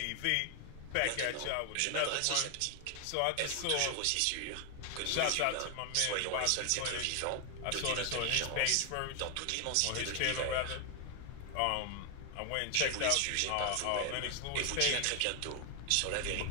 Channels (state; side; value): different; both; correlation 0.00